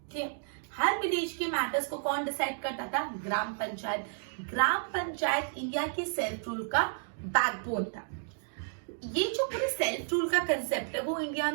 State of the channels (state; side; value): silent; left; digital silence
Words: ठीक है, हर विलेज के मैटर्स को कौन डिसाइड करता था, ग्राम पंचायत। ग्राम पंचायत इंडिया के सेल्फ रूल का बैकबोन था। ये जो पूरे सेल्फ रूल का कंसेप्ट है वो इंडिया